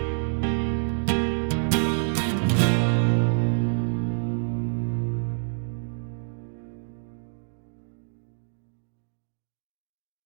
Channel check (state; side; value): silent; left; digital silence